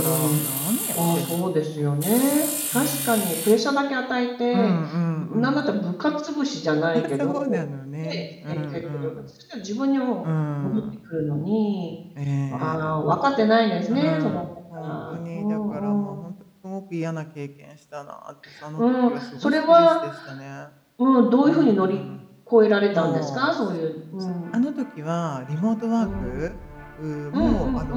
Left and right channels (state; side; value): identical; both; correlation 1.00